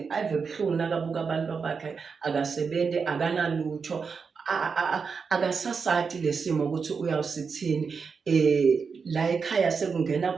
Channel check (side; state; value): left; quieter; 5.5 dB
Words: ave buhlungu nakabuka abantu bakhe akasebenzi akanalutho akasasati lesimo ukuthi uyawusithini la ekhaya sekungena